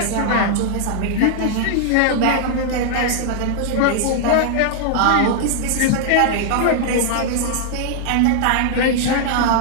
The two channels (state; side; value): different; both; correlation -0.01